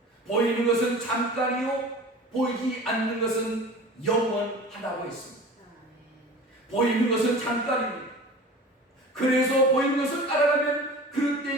보이는 것은 잠깐이요 보이지 않는 것은 영원하다고 했습니다. 보이는 것은 잠깐입니다. 그래서 보이는 것을 따라가면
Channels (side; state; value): both; normal; correlation 0.38